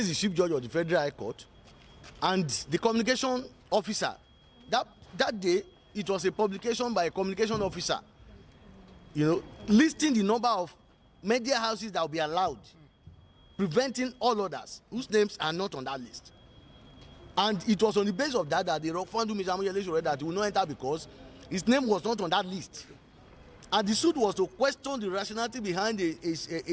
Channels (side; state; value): both; identical; correlation 1.00